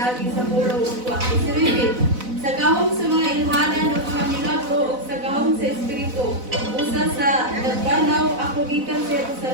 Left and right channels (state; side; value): late; left; 4.0 ms